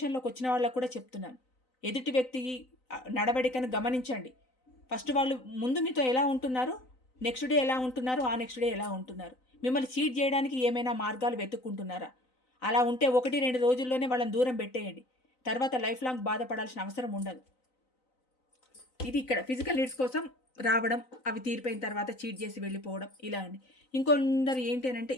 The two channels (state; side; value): late; right; 3.9 ms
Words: వచ్చిన వాళ్ళకి కూడా చెప్తున్నాను. ఎదుటి వ్యక్తి నడవడికను గమనించండి. ఫస్ట్ వాళ్ళు ముందు మీతో ఎలా ఉంటున్నారు? నెక్స్ట్ డే ఎలా ఉంటున్నారు? ఆ నెక్స్ట్ డే ఎలా ఉంటున్నారు? మిమ్మల్ని చీట్ చేయడానికి ఏమైనా మార్గాలు వెతుక్కుంటున్నారా? అలా ఉంటే 1, 2 రోజుల్లోనే వాళ్ళని దూరం పెట్టేయండి. తర్వాత లైఫ్ లాంగ్ బాధపడాల్సిన అవసరం ఉండదు. ఇది ఇక్కడ ఫిజికల్ నీడ్స్ కోసం రావడం, అవి తీరిపోయిన తర్వాత చీట్ చేసి వెళ్ళిపోవడం ఇలా అండి. ఇంకొందరు ఏంటి అనంటే